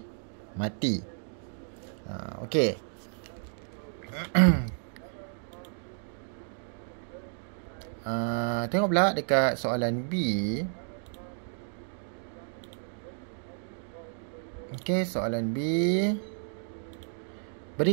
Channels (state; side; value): silent; left; digital silence